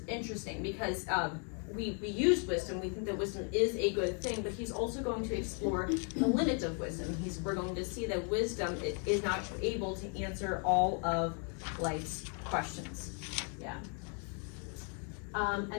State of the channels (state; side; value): quieter; right; 39.9 dB